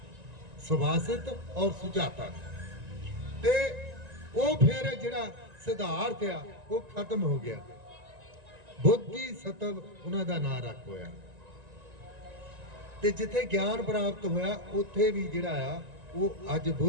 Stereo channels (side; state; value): left; late; 1.9 ms